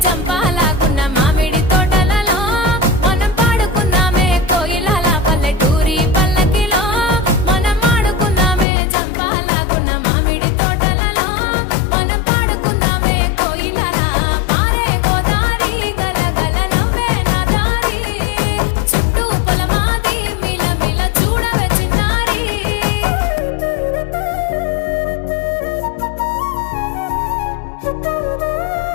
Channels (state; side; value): drops out; right; at 8.7 s